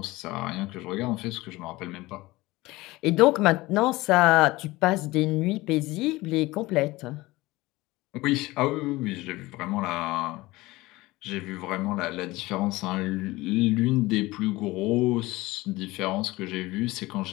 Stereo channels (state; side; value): quieter; right; 20.0 dB